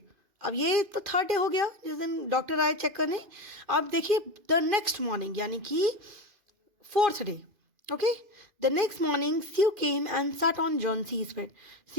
अब ये तो थर्ड डे हो गया जिस दिन डॉक्टर आए चेक करने. अब देखिए द नेक्स्ट मॉर्निंग यानी कि fourth day. Okay, the next morning Sue came and sat on Johnsy's bed.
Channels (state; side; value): late; left; 2.4 ms